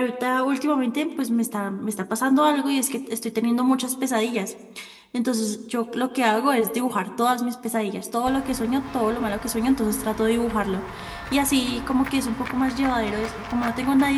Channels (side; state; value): both; identical; correlation 1.00